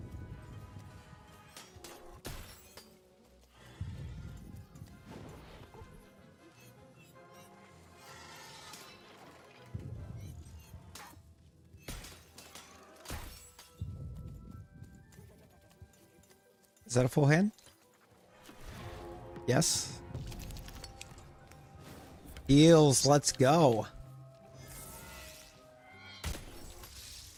Is that a full hand? Yes. Heals, let's go.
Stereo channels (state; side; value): identical; both; correlation 1.00